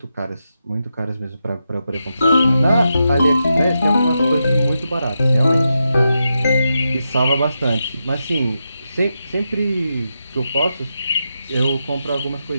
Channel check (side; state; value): both; inverted; correlation -0.87